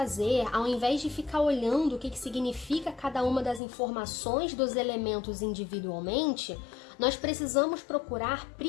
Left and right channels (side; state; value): right; drops out; at 3.6 s